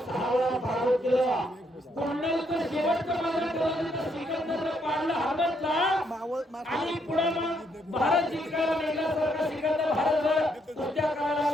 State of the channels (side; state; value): both; normal; correlation 0.74